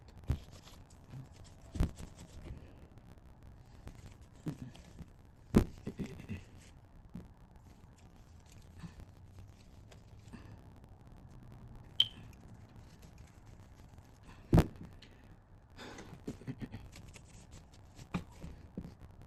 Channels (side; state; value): both; identical; correlation 1.00